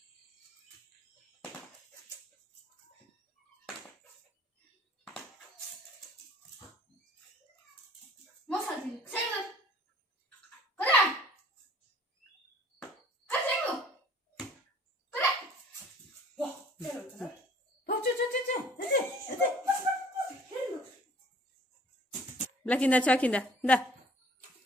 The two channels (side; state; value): both; normal; correlation 0.53